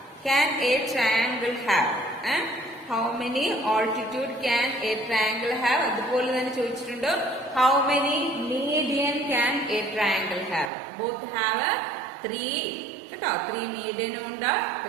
A triangle have? How many altitude can A triangle have? അതുപോലെ തന്നെ ചോദിച്ചിട്ടുണ്ട് how many median can A triangle have? Both have 3 കേട്ടോ. 3 മീഡിയനും ഉണ്ട്,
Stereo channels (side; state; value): left; drops out; at 10.7 s